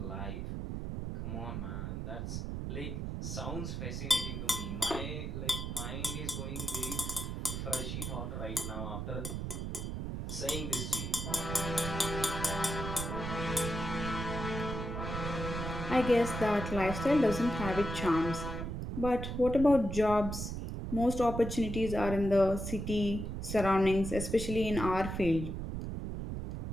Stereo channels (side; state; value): right; noise; rumble, 4 dB below the sound